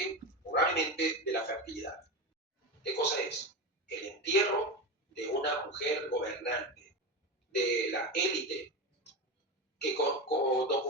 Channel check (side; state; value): both; normal; correlation 0.20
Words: de la fertilidad. ¿Qué cosa es? El entierro de una mujer gobernante, de la élite, que